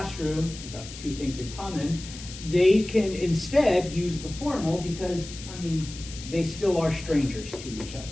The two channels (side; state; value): left; noise; hiss, 13 dB below the sound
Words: we've got the two things in common, they can instead use the formal because, I mean, they still are strangers to each other.